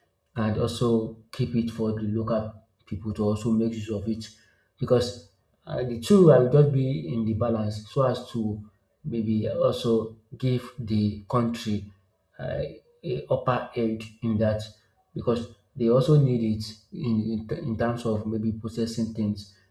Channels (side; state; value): both; identical; correlation 1.00